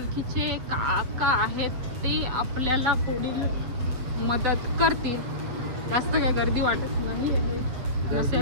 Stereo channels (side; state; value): left; late; 8.0 ms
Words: काका आहेत ते आपल्याला पुढील मदत करतील. जास्त काय गर्दी वाटत नाही